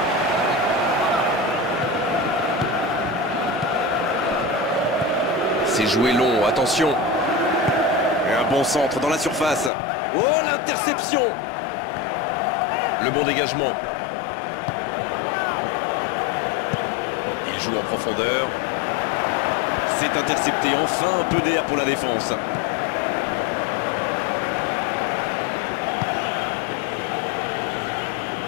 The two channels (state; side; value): drops out; right; at 9.7 s